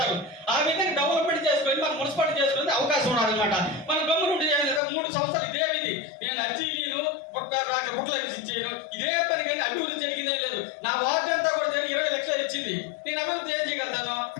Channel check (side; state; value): right; drops out; at 4.8 s